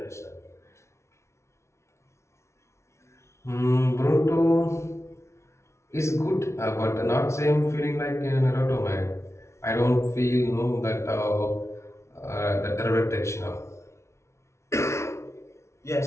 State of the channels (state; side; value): late; right; 0.13 ms